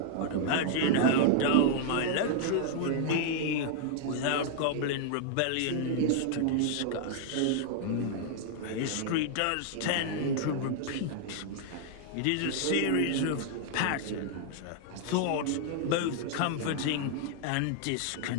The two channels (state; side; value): different; both; correlation -0.01